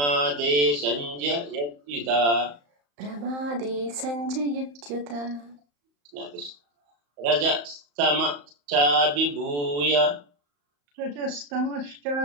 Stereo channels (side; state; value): left; late; 35 ms